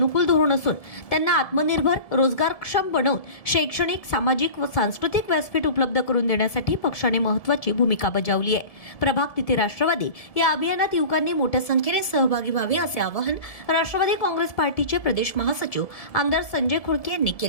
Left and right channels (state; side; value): late; right; 1.7 ms